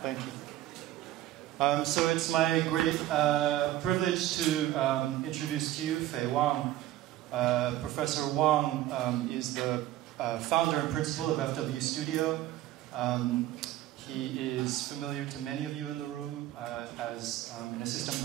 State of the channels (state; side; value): quieter; left; 14.3 dB